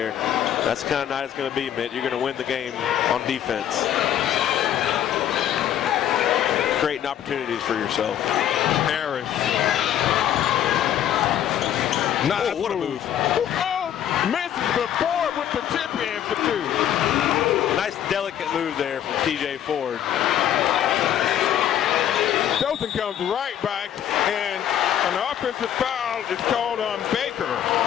That's the kind of night it's going to be, Mitt. You're going to win the game on defense. Creating opportunities for yourself. Harris. Nice what a move. Misses, but Ford with the tip in for 2. Nice delicate move there from TJ Ford. Dothan comes right back, and an offensive foul is called on Baker.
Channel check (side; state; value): right; quieter; 10.6 dB